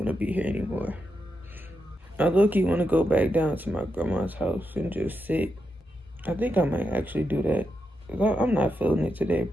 to be here anymore. I low-key want to go back down to my grandma's house and just sit. I think I might actually do that. I'm not feeling it today,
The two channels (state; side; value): normal; both; correlation 0.85